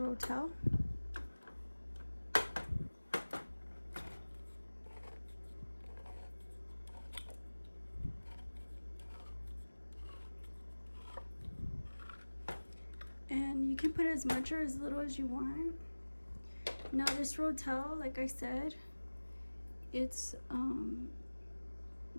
And you can put as much or as little as you want. Now this Rotel, like I said, it's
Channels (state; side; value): inverted; both; correlation -1.00